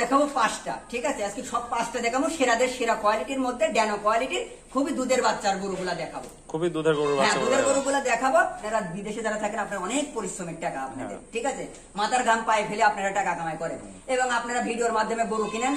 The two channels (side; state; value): both; identical; correlation 1.00